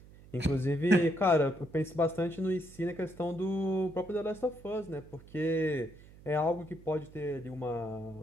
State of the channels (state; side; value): noise; right; hum, 21 dB below the sound